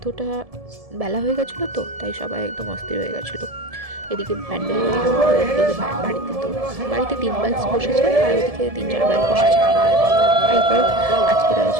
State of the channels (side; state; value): left; late; 1.7 ms